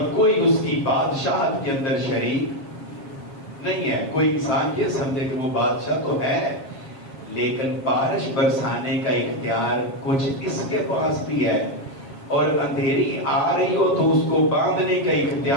کوئی اس کی بادشاہت کے اندر شریک نہیں ہے. کوئی انسان یہ سمجھے کہ وہ بادشاہ تو ہے لیکن بارش برسانے کا اختیار کچھ اس کے پاس بھی ہے، اور اندھیری آ رہی ہو تو اس کو باندھنے کا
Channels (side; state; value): right; late; 7.4 ms